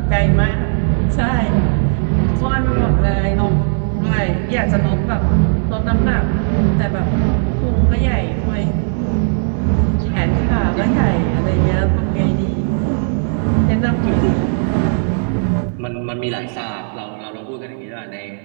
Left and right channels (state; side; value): silent; left; 62 dB below the other